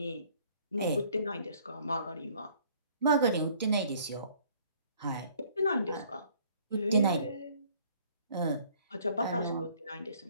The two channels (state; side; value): inverted; both; correlation -0.59